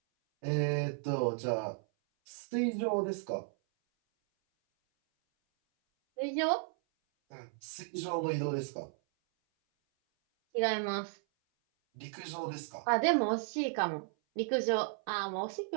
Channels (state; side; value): silent; left; 55 dB below the other